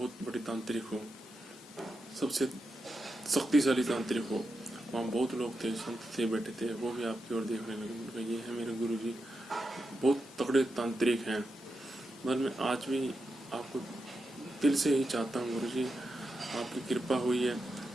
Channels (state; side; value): normal; both; correlation 0.88